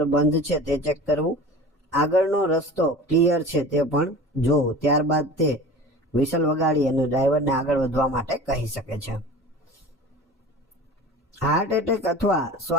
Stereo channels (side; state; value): both; normal; correlation 0.37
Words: બંધ છે તે ચેક કરવું, આગળનો રસ્તો ક્લિયર છે તે પણ જોવું. ત્યારબાદ તે વિસલ વગાડી અને ડ્રાઈવરને આગળ વધવા માટે કહી શકે છે. હાર્ટ એટેક અથવા